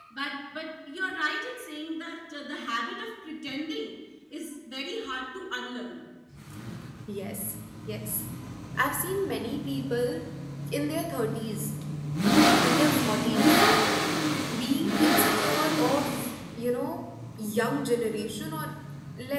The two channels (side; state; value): both; identical; correlation 1.00